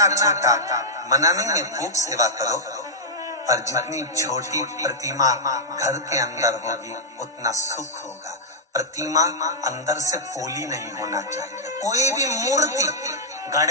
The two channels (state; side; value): normal; both; correlation -0.07